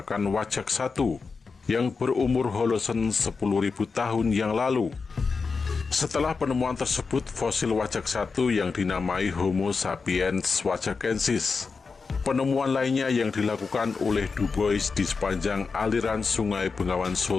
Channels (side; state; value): right; quieter; 4.8 dB